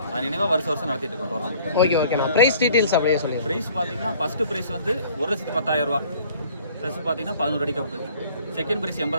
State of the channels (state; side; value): inverted; both; correlation -0.54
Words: அது நினைவாக வருஷம் நடத்திட்டு இருக்கோம் டோர்னமெண்ட். ஓகே நான் ப்ரைஸ் டீட்டெயில்ஸ் அப்படியே சொல்லி. ப்ரைஸ் பார்த்தீங்கன்னா ஃபஸ்ட்டு ப்ரைஸ் வந்து 1,10,000 ரூபா. ப்ளஸ் பார்த்தீங்கன்னா 11 அடி கப்பு. செகண்ட் ப்ரைஸ்